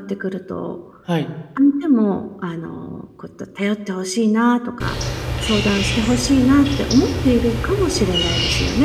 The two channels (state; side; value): identical; both; correlation 1.00